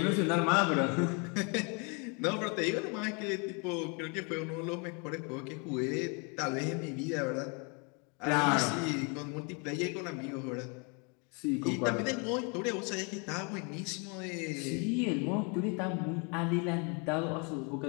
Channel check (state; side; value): quieter; right; 34.0 dB